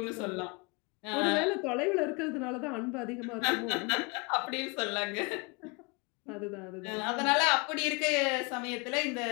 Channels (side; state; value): right; quieter; 30.0 dB